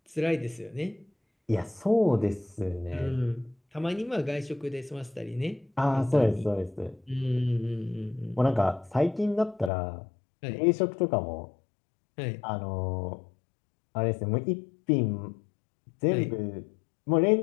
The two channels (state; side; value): drops out; right; at 9.7 s